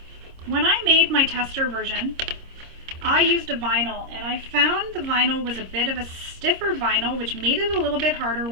when I made my tester version, I used a vinyl, and I found the vinyl was a bit of a stiffer vinyl, which made it a little bit harder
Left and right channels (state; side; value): late; left; 26 ms